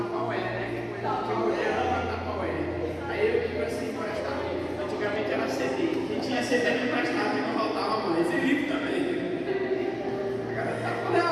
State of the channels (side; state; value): both; identical; correlation 1.00